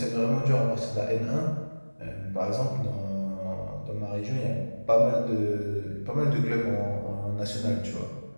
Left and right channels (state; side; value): inverted; both; correlation -1.00